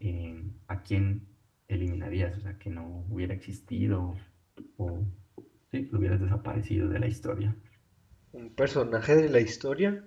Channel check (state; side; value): identical; both; correlation 1.00